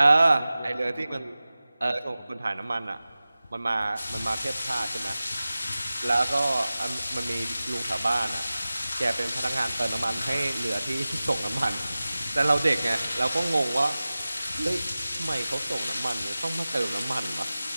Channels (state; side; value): inverted; both; correlation -0.96